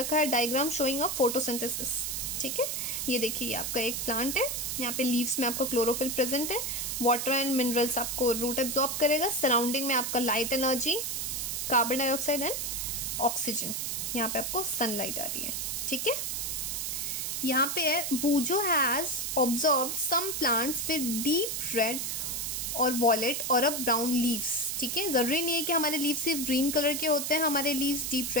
है डायग्राम शोइंग अ फोटोसिंथेसिस, ठीक है। ये देखिए, ये आपका एक प्लांट है, यहाँ पे लीव्स में आपका क्लोरोफिल प्रेजेंट है, वाटर एंड मिनरल्स आपको रूट एब्जॉर्ब करेगा, सराउंडिंग में आपका light energy, carbon dioxide and oxygen, यहाँ पे आपको सनलाइट आ रही है, ठीक है। यहाँ पे है Boojho has observed some plants with deep red और वॉलेट और अ ब्राउन लीव्स, ठीक है। जरूरी नहीं है कि हमारे लीव्स सिर्फ ग्रीन कलर के होते हैं, हमारे लीव्स डीप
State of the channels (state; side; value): noise; right; hiss, 2 dB below the sound